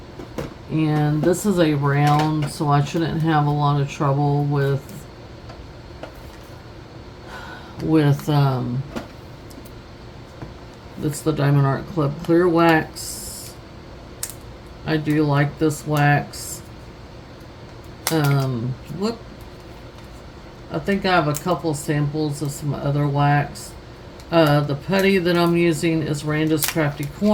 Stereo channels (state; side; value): identical; both; correlation 1.00